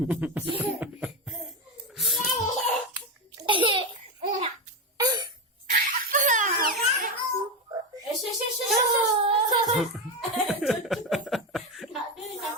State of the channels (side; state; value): both; normal; correlation 0.13